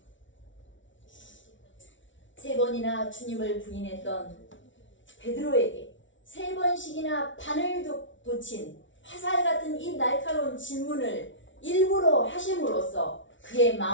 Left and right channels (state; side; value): late; right; 0.56 ms